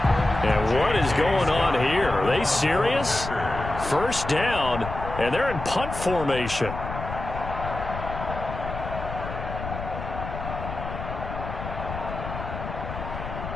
And what is going on here? Are they serious? 1st down, and they're in punt formation.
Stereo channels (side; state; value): left; noise; rumble, 8 dB below the sound